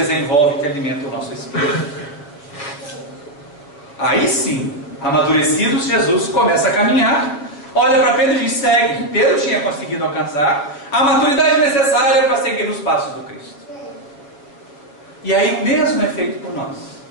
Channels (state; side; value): late; right; 7.0 ms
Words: que alimenta o nosso espírito. Aí sim, amadurecidos, Jesus começa a caminhar, olha para Pedro e diz: segue. Pedro tinha conseguido alcançar a maturidade necessária para seguir nos passos do Cristo. E aí o mesmo é feito por nós.